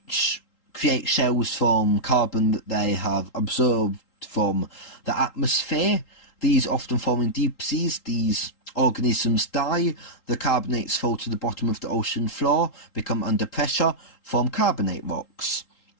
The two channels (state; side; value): late; right; 3.8 ms